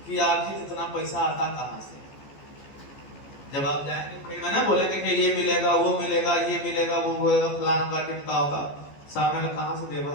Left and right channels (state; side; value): late; right; 14 ms